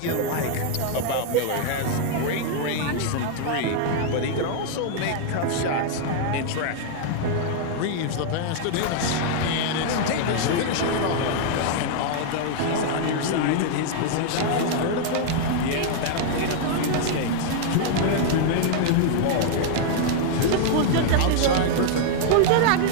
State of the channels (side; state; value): both; different; correlation -0.01